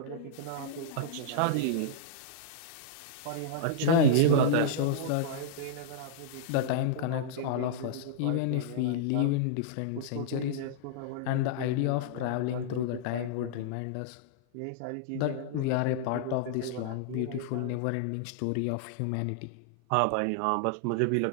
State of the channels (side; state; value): both; different; correlation -0.01